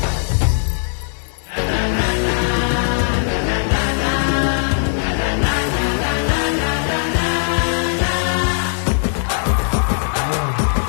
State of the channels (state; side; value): silent; right; 58 dB below the other